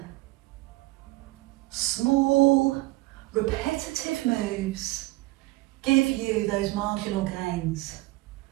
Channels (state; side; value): quieter; left; 20.8 dB